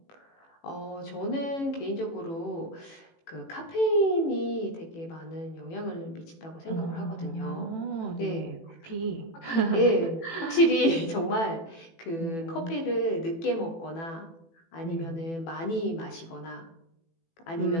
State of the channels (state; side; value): late; right; 18 ms